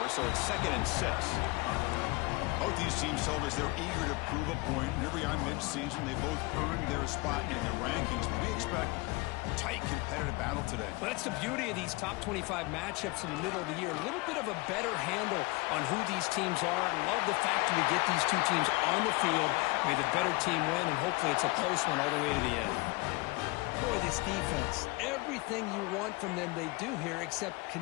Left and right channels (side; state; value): right; quieter; 24.6 dB